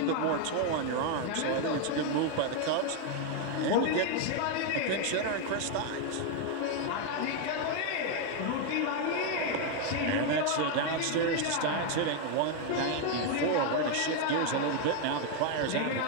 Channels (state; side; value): different; both; correlation 0.01